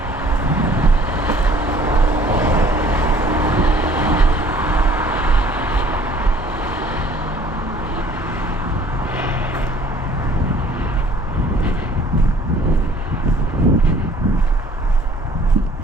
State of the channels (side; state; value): both; normal; correlation 0.54